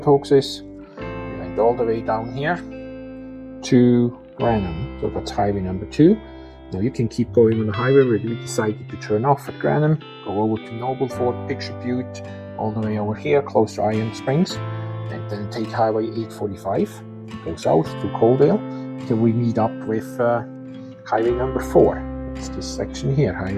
is. We went all the way down here to Granham, so that's highway number 2. Now you can keep going on the highway, but we decided to turn off at Granham, go over to Nobleford, Picture Butte, all the way over here, close to Iron Springs, and then take Highway 845, go south to Coaldale, till we meet up with Highway number 4. It's this section here,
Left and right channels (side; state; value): both; identical; correlation 1.00